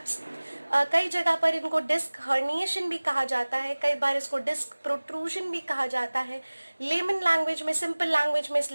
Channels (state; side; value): inverted; both; correlation -1.00